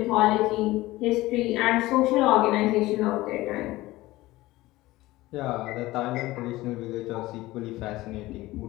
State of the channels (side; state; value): right; quieter; 18.3 dB